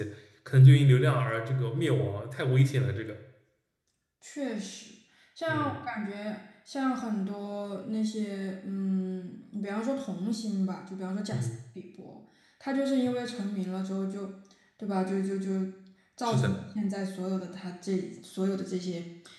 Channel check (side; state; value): both; identical; correlation 1.00